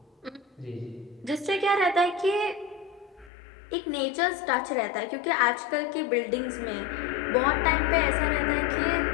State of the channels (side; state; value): right; drops out; at 3.3 s